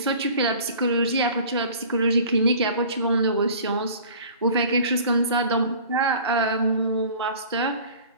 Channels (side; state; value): both; inverted; correlation -0.46